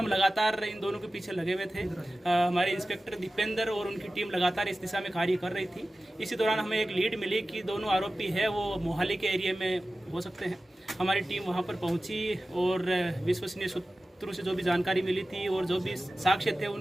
लगातार इन दोनों के पीछे लगे हुए थे। हमारे इंस्पेक्टर दीपेंद्र और उनकी टीम लगातार इस दिशा में कार्य कर रही थी। इसी दौरान हमें एक लीड मिली कि दोनों आरोपी है वो मोहाली के एरिया में हो सकते हैं। हमारी टीम वहां पर पहुंची और विश्वसनीय सूत्रों से जो भी जानकारी मिली थी और जो भी साक्ष्य थे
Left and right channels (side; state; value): both; normal; correlation 0.95